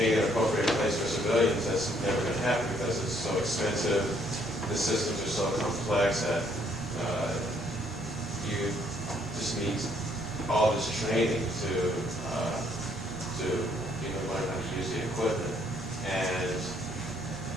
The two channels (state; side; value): normal; both; correlation 0.67